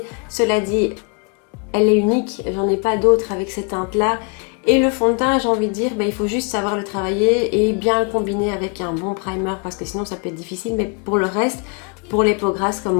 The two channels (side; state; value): right; quieter; 35.3 dB